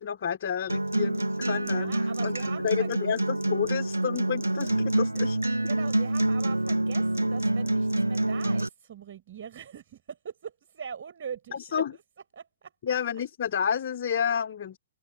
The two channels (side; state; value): both; inverted; correlation -0.84